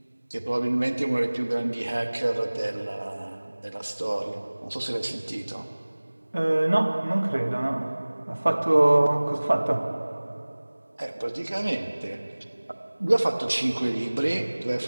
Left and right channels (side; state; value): both; inverted; correlation -1.00